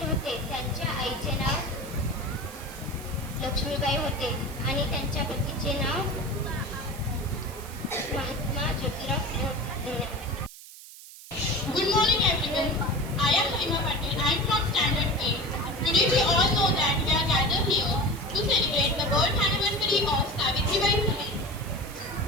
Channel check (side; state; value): right; noise; hiss, 17 dB below the sound